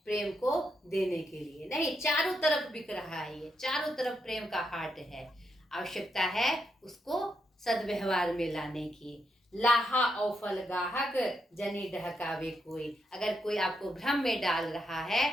प्रेम को देने के लिए। नहीं, चारों तरफ बिक रहा है, ये चारों तरफ प्रेम का हाट है। आवश्यकता है उसको सद्व्यवहार में लाने की। लाहा और फल गाहक जनी ढहकावे कोई। अगर कोई आपको भ्रम में डाल रहा है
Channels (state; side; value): normal; both; correlation 0.81